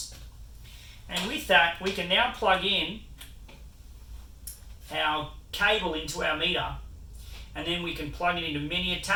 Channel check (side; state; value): both; identical; correlation 1.00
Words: And with that, we can now plug in our cable into our meter, and then we can plug it into many